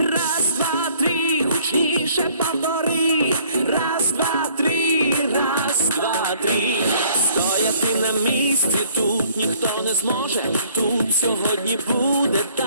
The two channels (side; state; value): both; inverted; correlation -0.59